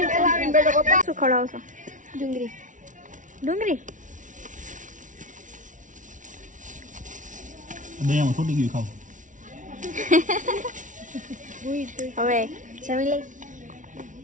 શું ખવડાવશો? ડુંગળી. ડુંગળી હવે જમી લઈ.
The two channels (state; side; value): late; left; 0.37 ms